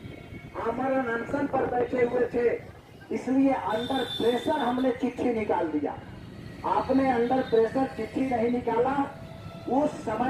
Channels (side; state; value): both; identical; correlation 1.00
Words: आमरण अनशन पर बैठे हुए थे, इसलिए अंडर प्रेशर हमने चिट्ठी निकाल दिया। आपने अंडर प्रेशर चिट्ठी नहीं निकाला। उस